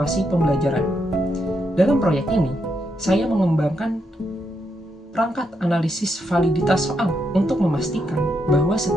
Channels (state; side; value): normal; both; correlation 0.80